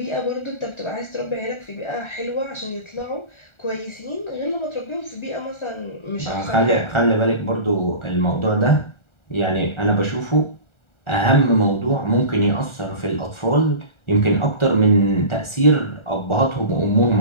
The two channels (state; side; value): late; right; 1.4 ms